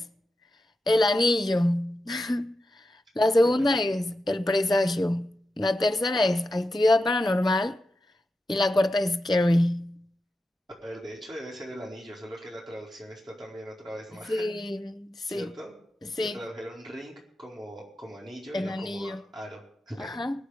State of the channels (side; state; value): both; normal; correlation 0.90